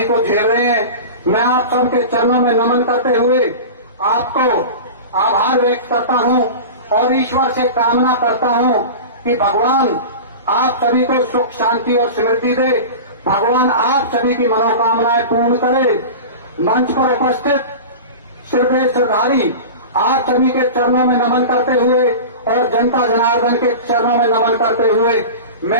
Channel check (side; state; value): both; inverted; correlation -0.31